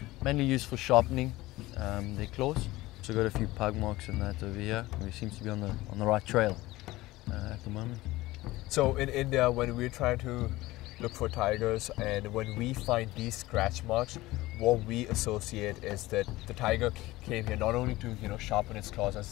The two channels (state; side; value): quieter; right; 18.6 dB